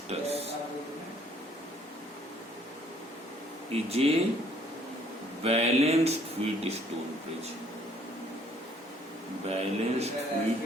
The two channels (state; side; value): normal; both; correlation 0.61